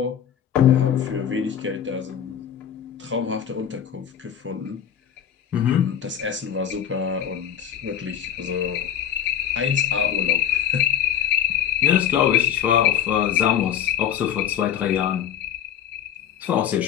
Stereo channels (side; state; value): right; quieter; 9.4 dB